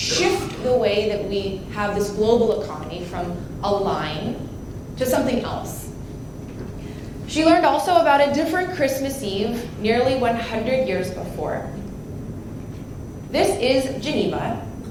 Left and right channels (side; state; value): both; identical; correlation 1.00